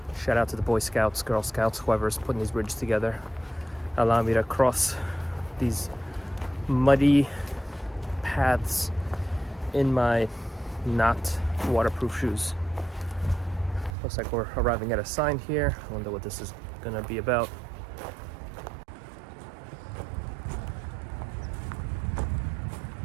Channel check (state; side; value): drops out; left; at 14.0 s